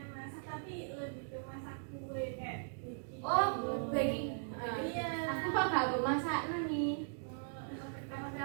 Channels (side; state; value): left; silent; digital silence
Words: tapi lebih ke masak kue kayak bikin. oh baking Iya. aku kok gak masak nih